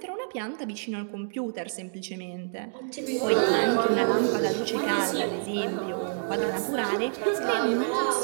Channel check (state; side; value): silent; left; digital silence